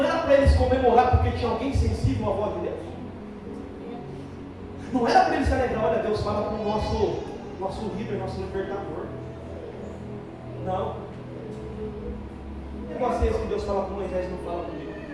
era para eles comemorar porque tinha alguém sensível à voz de Deus? Não era para eles se alegrar: olha, Deus fala com o nosso líder, nosso libertador. Não. Que negócio é esse que Deus fala com Moisés e não fala comigo?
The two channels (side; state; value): both; identical; correlation 1.00